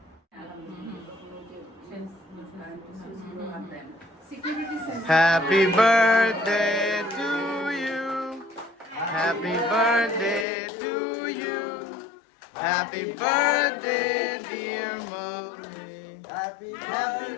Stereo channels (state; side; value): drops out; right; at 10.5 s